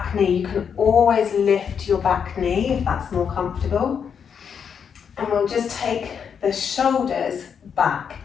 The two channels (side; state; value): right; quieter; 7.2 dB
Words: knee, you can always lift your back knee if that's more comfortable. And we'll just take the shoulders back.